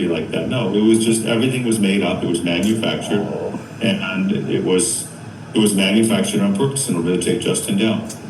like that. No, it was just, everything was made up. It was manufactured, and it was manufactured on purpose in order to take Justin down.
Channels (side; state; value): both; identical; correlation 1.00